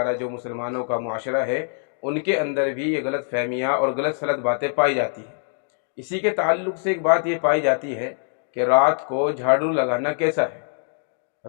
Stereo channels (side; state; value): right; silent; digital silence